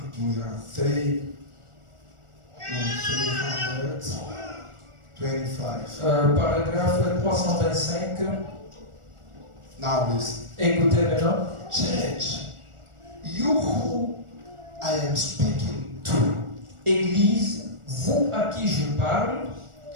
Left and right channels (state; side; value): late; left; 1.4 ms